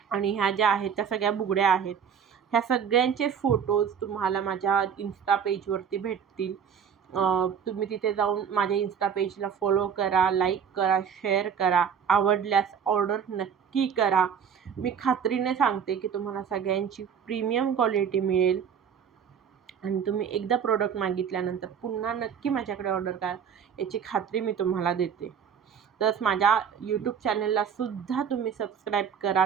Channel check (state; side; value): quieter; left; 7.6 dB